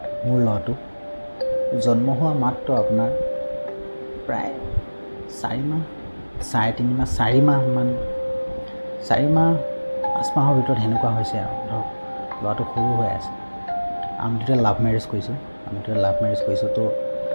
মোৰ ল'ৰাটো জন্ম হোৱা মাত্ৰ আপোনাৰ প্ৰায় 4 মাহ, 3.5 মাহ, 4 মাহমান, 4 মাহ 5 মাহৰ ভিতৰত সেনেকুৱা হৈছে আৰু ধৰক ল'ৰাটো সৰু হৈ আছে। আমি দুটা লাভ মেৰেজ কৰিছোঁ। তো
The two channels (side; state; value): both; inverted; correlation -1.00